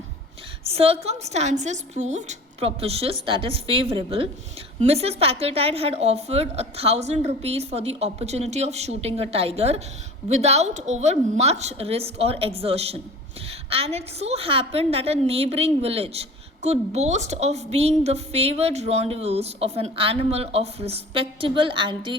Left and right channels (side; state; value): both; normal; correlation 0.41